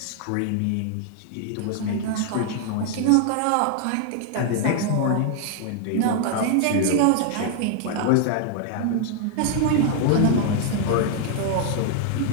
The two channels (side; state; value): both; different; correlation 0.00